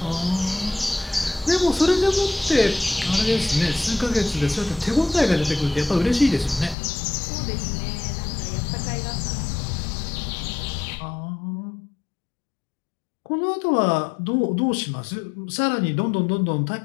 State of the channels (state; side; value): drops out; right; at 6.8 s